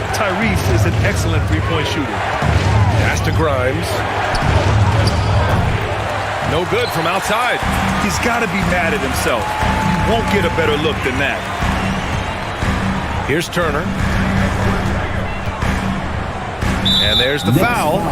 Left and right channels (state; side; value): identical; both; correlation 1.00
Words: Tyrese is an excellent three-point shooter. Pass to Grimes. No good from outside. He's got to be mad at himself. You won't get a better look than that. Here's Turner. And there's the foul.